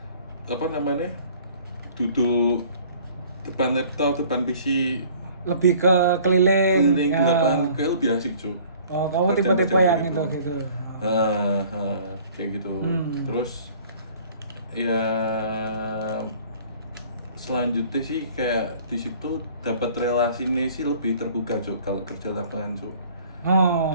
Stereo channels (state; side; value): inverted; both; correlation -0.52